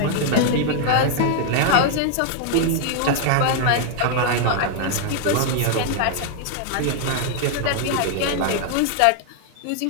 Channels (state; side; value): different; both; correlation 0.00